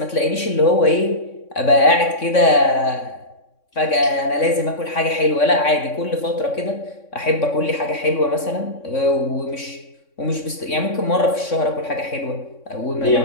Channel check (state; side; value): late; right; 3.6 ms